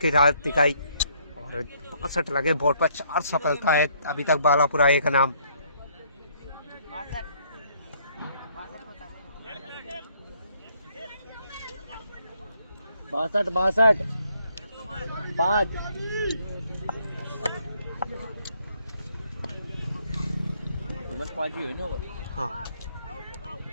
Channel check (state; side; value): inverted; both; correlation -0.67